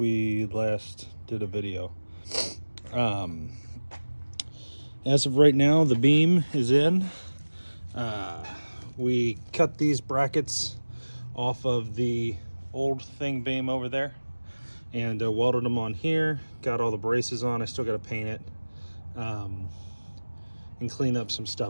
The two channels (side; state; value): both; inverted; correlation -1.00